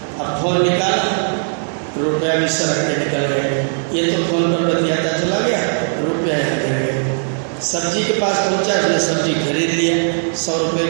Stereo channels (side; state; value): left; silent; digital silence